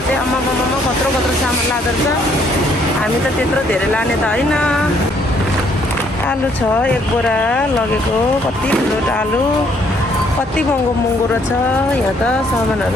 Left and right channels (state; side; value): normal; both; correlation 0.66